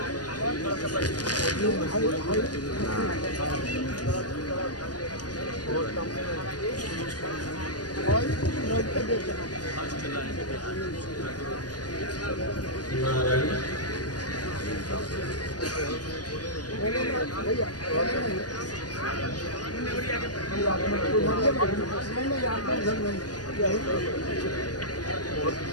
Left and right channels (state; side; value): late; right; 0.69 ms